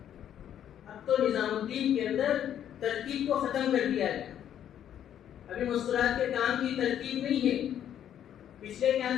اب تو نظام الدین کے اندر ترتیب کو ختم کر دیا گیا. ابھی مستورات کے کام کی ترتیب نہیں ہے. پچھلے کیا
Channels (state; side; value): quieter; right; 10.1 dB